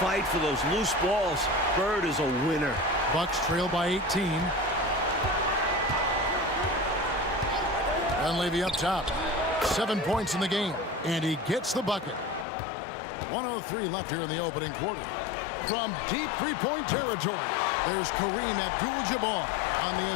for those loose balls. Bird is a winner. Bucks trail by 18. Dunleavy up top. 7 points in the game. And he gets the bucket. 1:03 left here in the opening quarter. From deep three-point territory, there's Kareem Abdul-Jabbar on the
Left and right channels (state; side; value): drops out; right; at 12.5 s